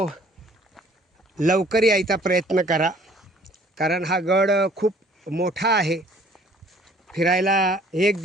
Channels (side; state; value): both; normal; correlation 0.56